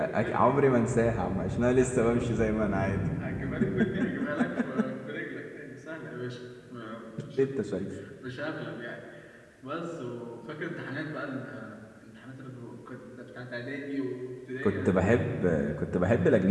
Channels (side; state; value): both; identical; correlation 1.00